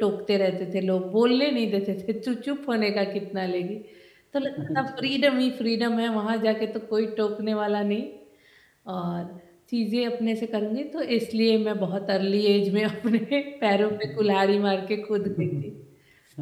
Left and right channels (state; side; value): identical; both; correlation 1.00